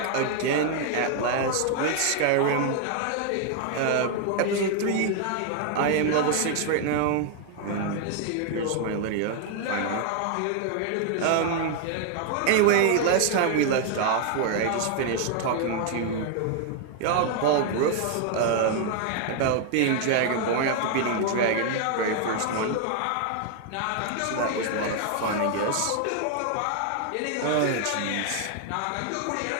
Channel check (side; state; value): both; different; correlation 0.00